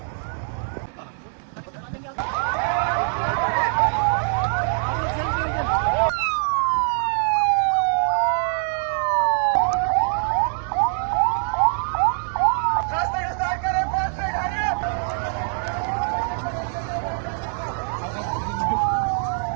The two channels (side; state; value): left; silent; 60 dB below the other